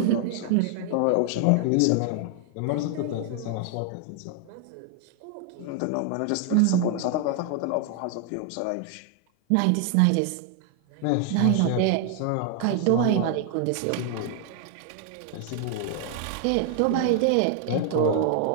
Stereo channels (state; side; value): different; both; correlation 0.00